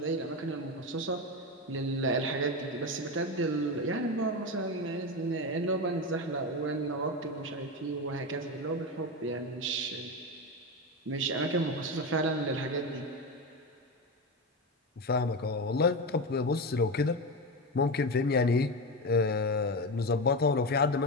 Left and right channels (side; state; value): both; normal; correlation 0.17